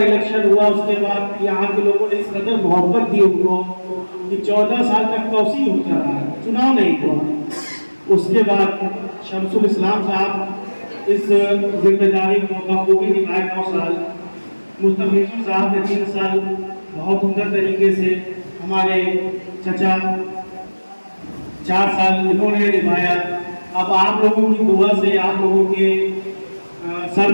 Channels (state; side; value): inverted; both; correlation -1.00